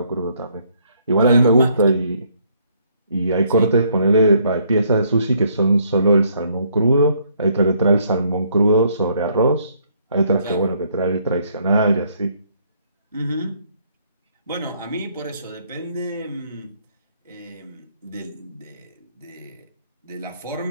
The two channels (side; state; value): both; inverted; correlation -0.67